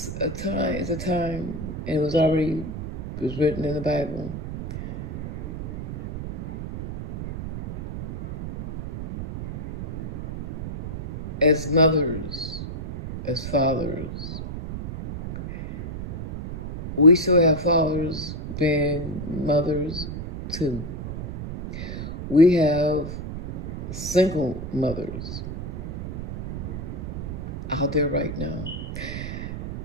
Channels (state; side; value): noise; right; rumble, 7 dB below the sound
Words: a time, and it was written in the Bible. As mothers, as fathers, we still have fathers being mothers too. We have single mothers out there right now.